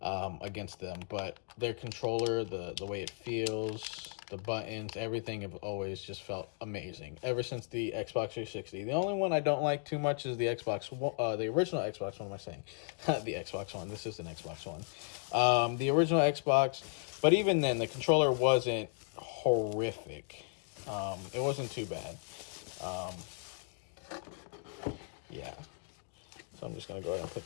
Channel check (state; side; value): silent; right; 54 dB below the other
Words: against them. But their controller, the way it feels, the buttons, everything have always just felt amazing ever since the Xbox 360. The only one I don't like too much is the Xbox, the original Xbox. What am I saying? The Xbox One. This is an Xbox One. The original Xbox, but even then, the controller wasn't horrific. It wasn't too bad. Yeah. So I'm just gonna go ahead and